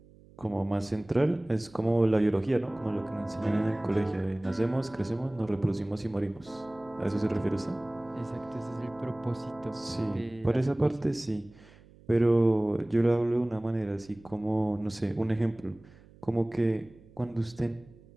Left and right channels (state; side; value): noise; right; hum, 24 dB below the sound